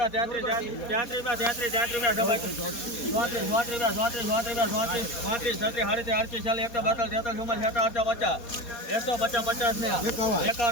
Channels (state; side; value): late; right; 4.2 ms